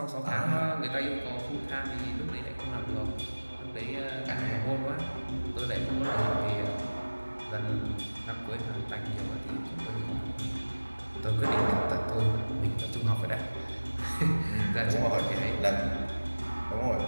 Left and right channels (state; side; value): inverted; both; correlation -1.00